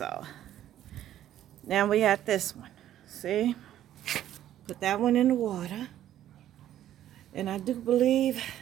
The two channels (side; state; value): left; quieter; 12.0 dB